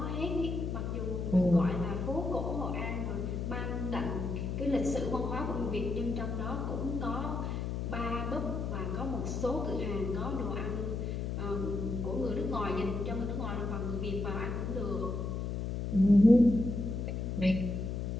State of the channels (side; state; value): left; noise; hum, 2 dB below the sound